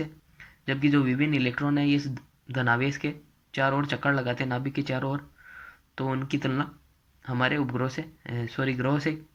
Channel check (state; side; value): identical; both; correlation 1.00